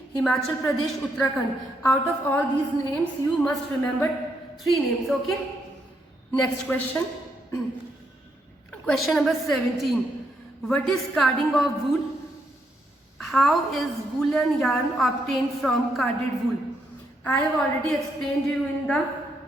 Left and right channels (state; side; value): normal; both; correlation 0.77